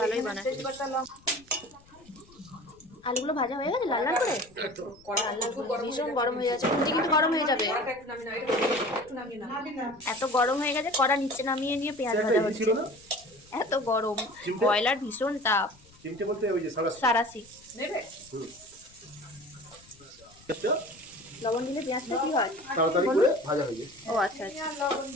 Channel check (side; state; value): left; noise; rumble, 27 dB below the sound